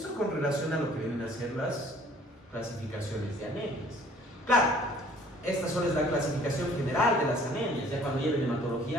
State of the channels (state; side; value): normal; both; correlation 0.55